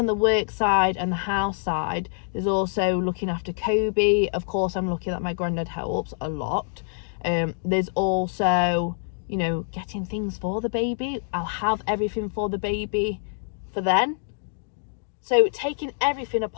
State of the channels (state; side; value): silent; right; digital silence